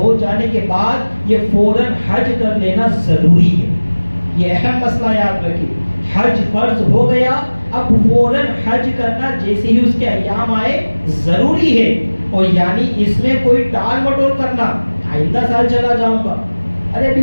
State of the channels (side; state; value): both; inverted; correlation -1.00